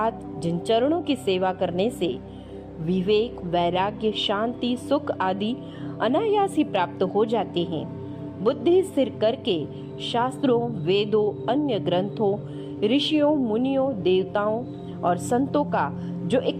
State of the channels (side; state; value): both; identical; correlation 1.00